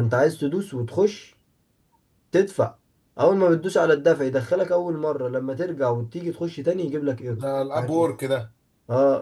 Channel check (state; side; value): identical; both; correlation 1.00